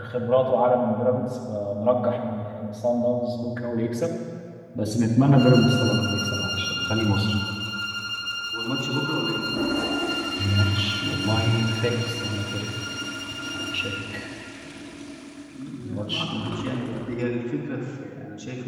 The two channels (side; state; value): both; identical; correlation 1.00